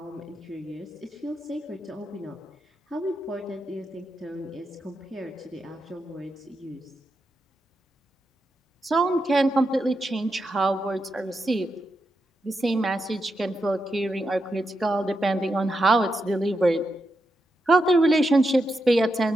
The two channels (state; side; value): normal; both; correlation 0.86